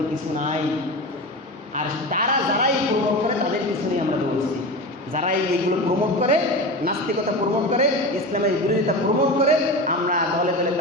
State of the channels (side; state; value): both; normal; correlation 0.26